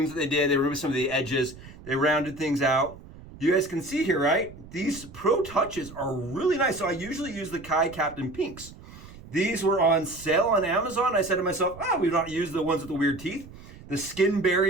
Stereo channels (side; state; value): right; noise; rumble, 18 dB below the sound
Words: that they did. They removed some of the edges. They rounded things out. You guys can see here, right? These Pro Touches are really nice. So I usually use the Kai Captain Pinks. These were on sale on Amazon. I said to myself, we've not used the ones with the weird teeth. The skin